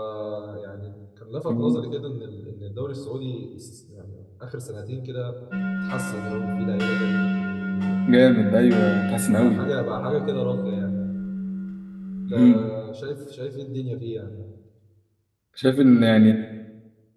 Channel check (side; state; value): both; identical; correlation 1.00